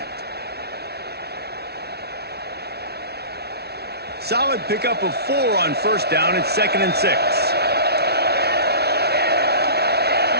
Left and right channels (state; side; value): late; left; 0.47 ms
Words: Solid pickup of 4 on first down. It's 2nd and 6.